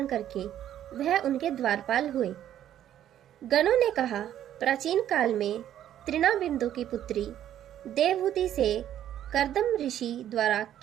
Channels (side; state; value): left; quieter; 11.2 dB